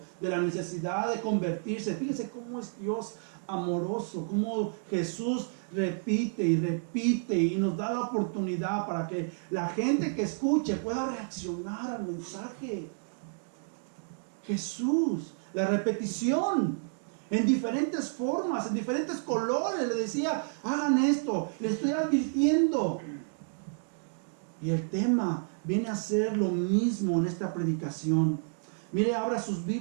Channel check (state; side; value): silent; left; digital silence